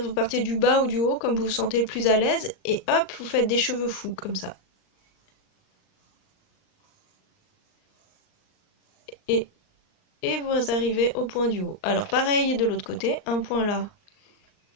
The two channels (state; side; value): late; right; 39 ms